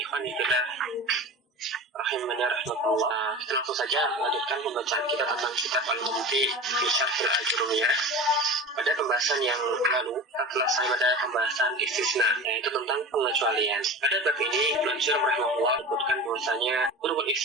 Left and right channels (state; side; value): normal; both; correlation 0.31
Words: fillah rahimani rahmatullah. Kita langsung saja melanjutkan pembacaan kita tentang kitab Al-Mumti fi Syarhil Ajurumiyah. Pada pembahasan yang lalu, telah saya pada pembahasan istisna, yaitu tentang pengecualian. Pada bab ini, Al-Ajur rahimahullah menyebutkan bahwasanya huruf